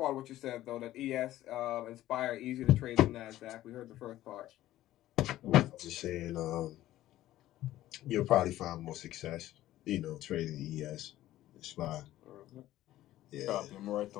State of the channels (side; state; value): right; quieter; 14.5 dB